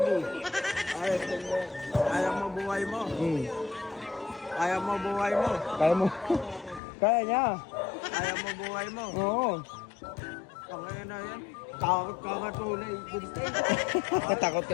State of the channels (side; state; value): right; drops out; at 6.8 s